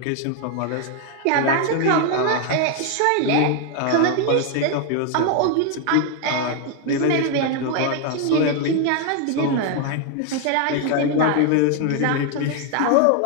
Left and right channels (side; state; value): both; different; correlation 0.00